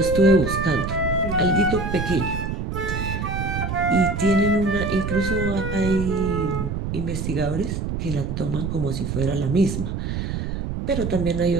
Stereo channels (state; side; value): noise; right; rumble, 3 dB below the sound